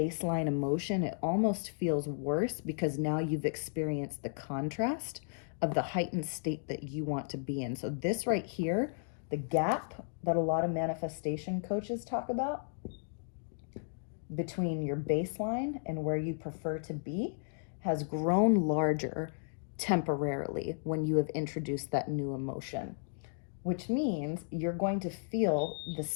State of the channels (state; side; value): silent; right; digital silence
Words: emotion, it almost feels worse because now you've experienced the contrast of the heightened state that you want to be in. So this right here, the gap that a lot of manifestation coaches talk about between your baseline and where you prefer to be has grown larger temporarily when you have introduced that new emotion, which means you're going to feel the